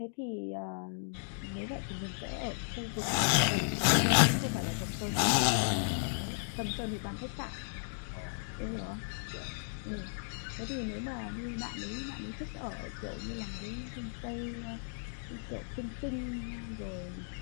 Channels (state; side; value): silent; right; digital silence